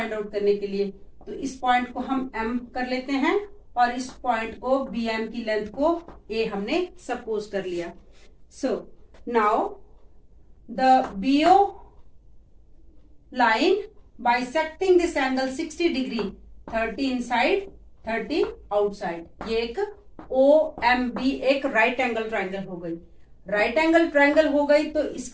आउट करने के लिए तो इस पॉइंट को हम M कर लेते हैं और इस पॉइंट को BM की लेंथ को A हमने सपोज कर लिया। So now the BO line bisecting this angle 60 degree, 30 inside 30 outside, ये एक OMB एक राइट एंगल ट्राइंगल हो गई। राइट एंगल ट्राइंगल हो गई तो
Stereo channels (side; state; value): both; identical; correlation 1.00